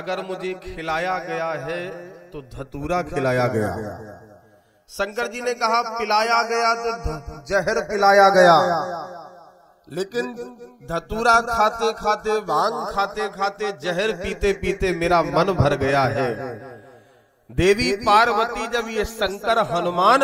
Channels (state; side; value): identical; both; correlation 1.00